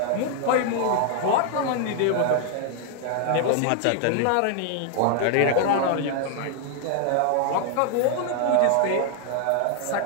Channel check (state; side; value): different; both; correlation 0.00